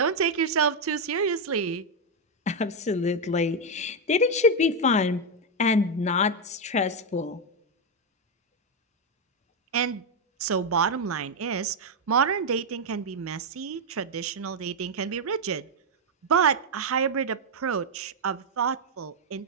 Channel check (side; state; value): both; normal; correlation 0.03